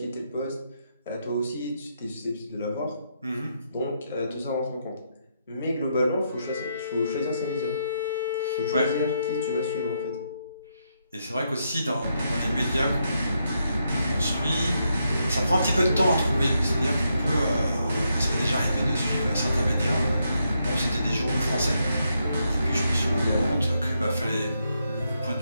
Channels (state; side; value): inverted; both; correlation -0.80